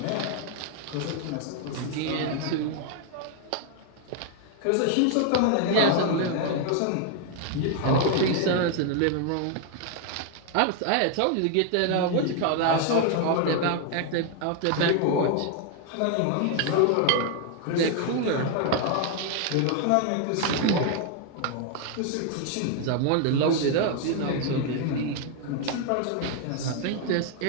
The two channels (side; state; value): both; different; correlation 0.00